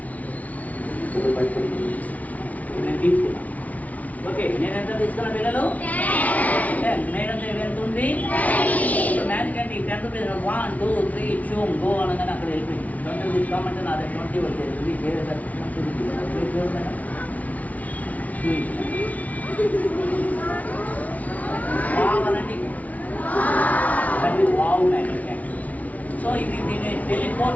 నేను తీసుకున్నా. ఓకే, నేను ఎంత తీసుకున్నా పిల్లలు? 10. మేడం దగ్గర ఎంత ఉంది? ఇప్పుడు మ్యాజిక్ అంటే 10 రూపీస్ 1 2 3 షూమ్ గో అనగానే అక్కడ వెళ్ళిపోయింది. 20 తీసుకోమంటే నా దగ్గర 20 వచ్చేది. వేరే వావనండి, అది వావ్ మ్యాజిక్. సో ఇది దీన్ని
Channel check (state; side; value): late; right; 0.071 ms